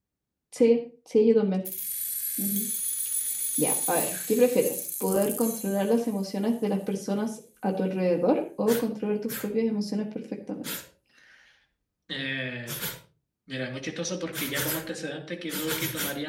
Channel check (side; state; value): both; identical; correlation 1.00